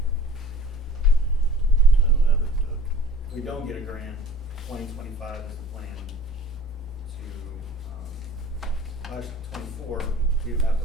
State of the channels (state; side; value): normal; both; correlation 0.45